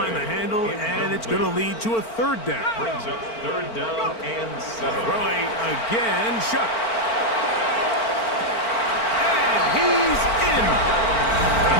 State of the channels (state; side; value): late; right; 4.4 ms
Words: the handle, and it's going to lead to a 3rd down. Brings up 3rd down and 7. Throwing again, Chuck. And he's in.